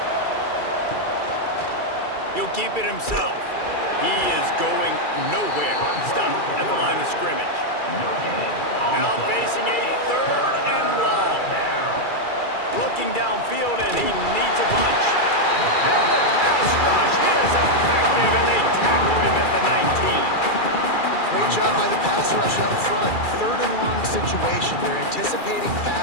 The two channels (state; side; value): late; right; 2.3 ms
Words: He'll keep it himself. He is going nowhere. Stop at the line of scrimmage. Now facing a 3rd and long. Looking downfield, and he needs a bunch. And the pass rush is effective, and they tackle him at the 19. Great job by the pass rush up front. 3rd and long situation. They're anticipating